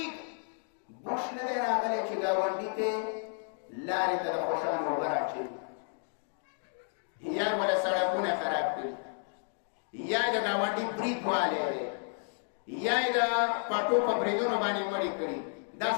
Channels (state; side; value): silent; right; 56 dB below the other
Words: بوش نه دی راغلی چې ګاونډي ته لارې ته د خوشانو اوبه راچوي یا ولا سړکونه خراب کړي یا د ګاونډي برید والی دی یا یې د پټو په بریدونو باندې مړې کړي دا